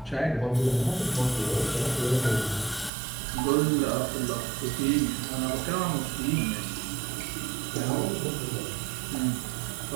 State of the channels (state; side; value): drops out; left; at 2.9 s